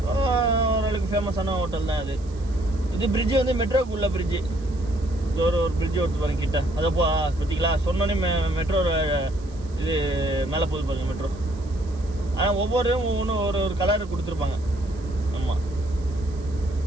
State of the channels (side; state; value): right; noise; hiss, 26 dB below the sound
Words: ஓரளவுக்கு ஃபேமஸான ஹோட்டல் தான் அது. இது பிரிட்ஜு வந்து மெட்ரோக்கு உள்ள பிரிட்ஜு. இது ஒரு பிரிட்ஜு ஒருத்து பாருங்க கிட்ட. அதை பார்த்தீங்களா, சொன்னோன்னே மெட்ரோ இது மேலே போகுது பாருங்க மெட்ரோ. ஆனால் ஒவ்வொன்றும் ஒரு கலர் கொடுத்துருப்பாங்க. ஆமாம்,